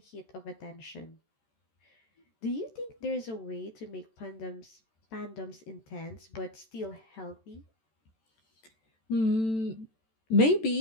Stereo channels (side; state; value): right; late; 14 ms